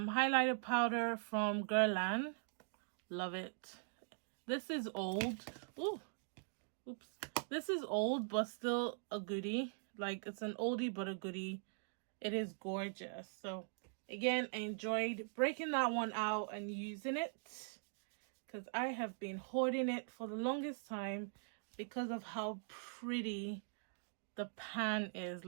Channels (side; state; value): left; silent; digital silence